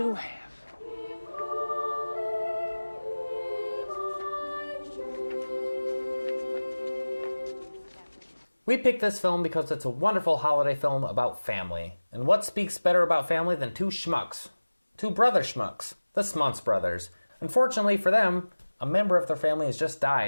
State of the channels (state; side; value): inverted; both; correlation -1.00